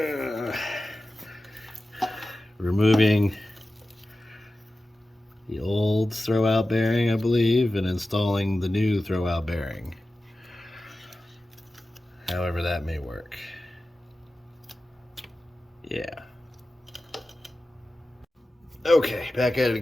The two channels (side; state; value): both; normal; correlation 0.95